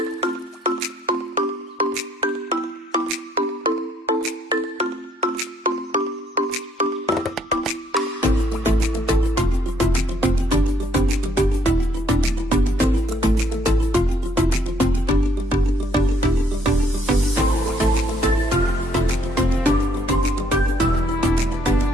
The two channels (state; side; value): normal; both; correlation 0.68